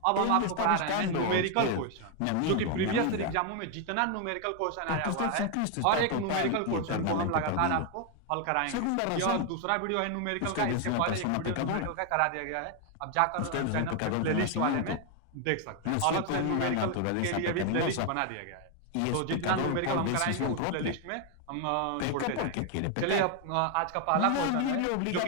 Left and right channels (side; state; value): both; different; correlation 0.01